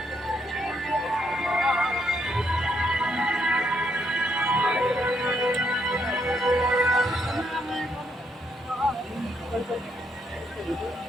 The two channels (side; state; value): both; normal; correlation 0.75